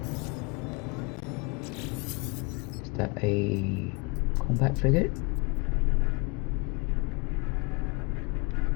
that a combat frigate?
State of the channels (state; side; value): quieter; right; 30.2 dB